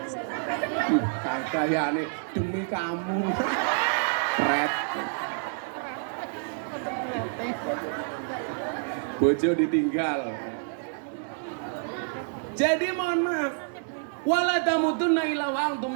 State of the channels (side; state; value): left; silent; digital silence